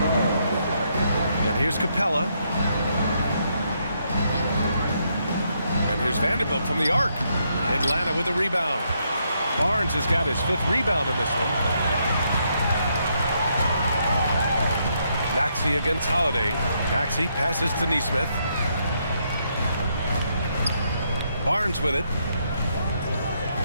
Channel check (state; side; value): inverted; both; correlation -0.76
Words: And here's Capella. And here's Vanderbilt from the arc. Atlanta with a rebound. Barnes has got his 5th rebound in this one. Maxey against Holiday. Maxey passes to Nesmith. Barnes with it.